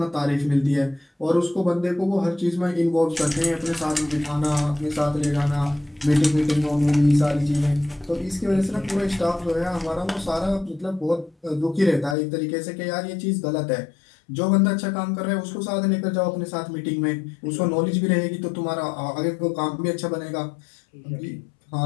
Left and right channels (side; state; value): right; drops out; at 12.2 s